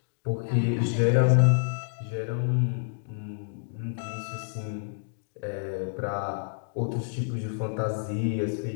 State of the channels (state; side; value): silent; right; digital silence